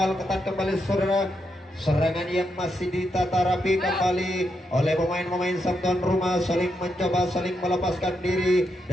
ketat kembali, saudara. Serangan yang masih ditata rapi kembali oleh pemain-pemain sang tuan rumah, saling mencoba, saling melepaskan diri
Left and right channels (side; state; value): both; normal; correlation 0.82